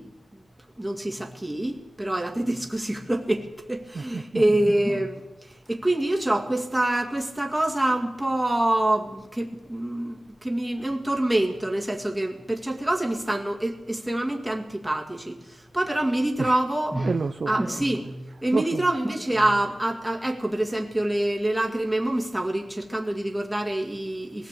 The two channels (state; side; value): normal; both; correlation 0.98